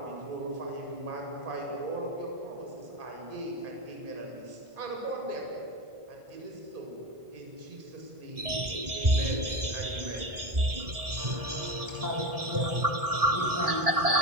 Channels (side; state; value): left; late; 1.7 ms